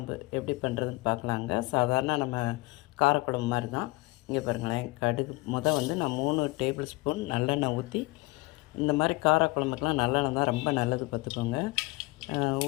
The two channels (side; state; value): right; quieter; 22.9 dB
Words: எப்படி பண்ணுறதுன்னு பார்க்கலாங்க. சாதாரண நம்ம காரக்குழம்பு மாதிரி தான். இங்கே பாருங்களேன், கடுகு வந்து நான் 3 டேபிள் ஸ்பூன் நல்லெண்ணெய் ஊற்றி, இந்த மாதிரி காரக்குழம்புக்கெலாம் நல்லெண்ணெய் தான் ரொம்ப நல்லது பார்த்துக்கோங்க.